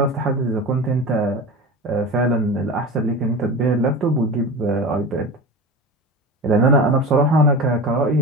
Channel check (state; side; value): normal; both; correlation 0.29